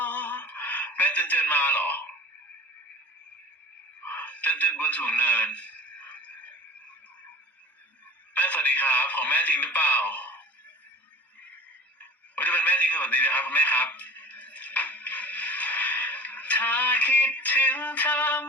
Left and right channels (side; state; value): both; normal; correlation 0.41